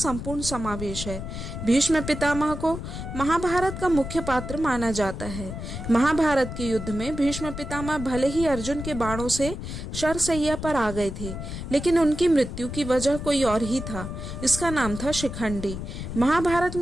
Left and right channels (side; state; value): left; noise; rumble, 7 dB below the sound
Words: समावेश है। भीष्म पितामह को महाभारत का मुख्य पात्र माना जाता है। महाभारत के युद्ध में भीष्म पितामह भले ही अर्जुन के बाणों से शरशैया पर आ गए थे, लेकिन उनकी मृत्यु की वजह कोई और ही था। इसका नाम था शिखंडी। महाभारत